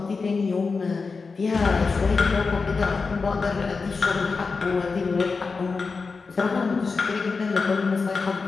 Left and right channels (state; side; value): quieter; right; 4.5 dB